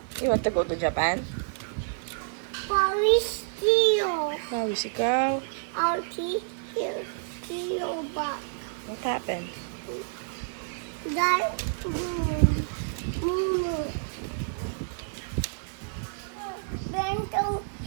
You want to go to Japan? Paris Tio. Pawis ikaw. Alti. Here. Tio back. What happened? That. Mumu. Bento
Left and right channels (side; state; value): left; silent; digital silence